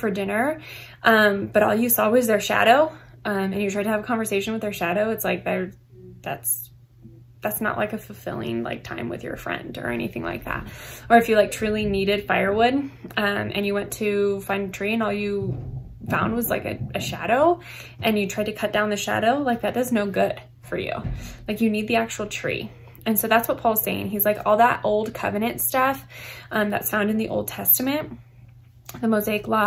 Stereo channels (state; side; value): identical; both; correlation 1.00